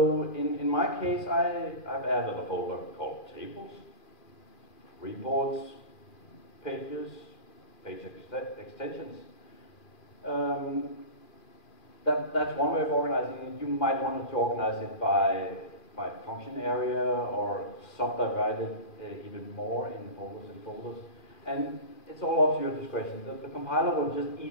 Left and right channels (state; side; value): late; right; 2.4 ms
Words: in my case, I've added a folder called tables, reports, pages, page extensions. That's one way of organizing it. You might want to organize it by function area or subdivide it even more in folders and folders. And it's all up to your discretion. The compiler will just